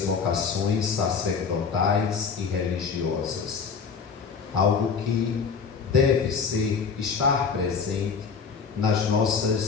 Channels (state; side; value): quieter; right; 5.7 dB